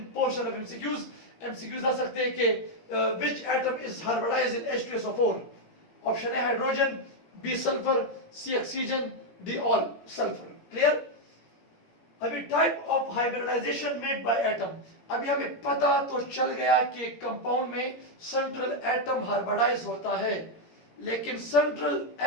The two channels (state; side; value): late; right; 17 ms